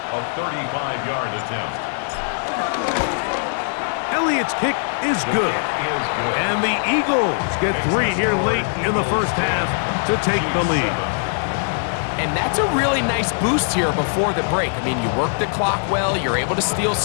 A 35-yard attempt. Elliott's kick is good. And the Eagles get 3 here late in the 1st half to take the lead. And that's a really nice boost here before the break. I mean, you work the clock well, you're able to steal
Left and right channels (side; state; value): right; silent; digital silence